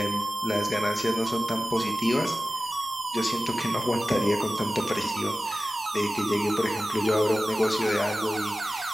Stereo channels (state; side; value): noise; right; rumble, 30 dB below the sound